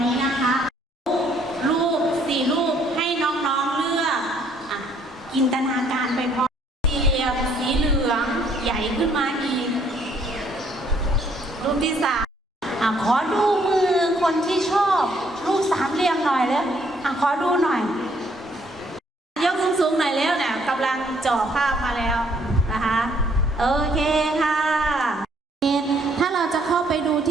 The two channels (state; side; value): normal; both; correlation 0.66